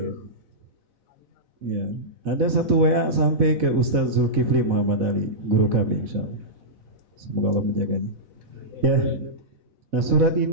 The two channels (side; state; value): left; late; 4.1 ms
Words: Ya, ada satu WA sampai ke Ustaz Zulkifli Muhammad Ali, guru kami insyaallah. Semoga Allah menjaganya. Ya, Nah surat